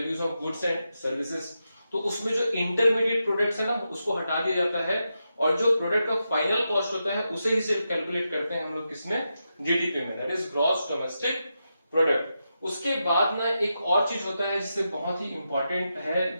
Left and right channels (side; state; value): both; inverted; correlation -0.87